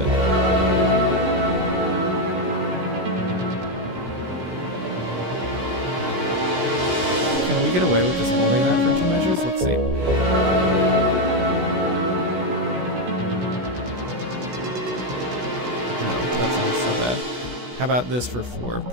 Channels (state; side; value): late; left; 16 ms